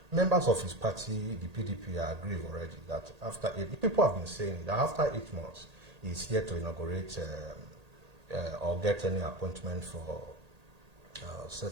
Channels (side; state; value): left; late; 1.8 ms